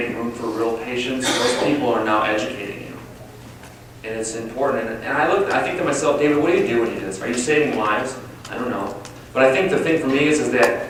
room for real patients, those people are now educating you. And it's important. And I think to myself, David, what do you do when you do this? Are you saving lives? I don't know. But I think the thing for me is that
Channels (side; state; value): both; identical; correlation 1.00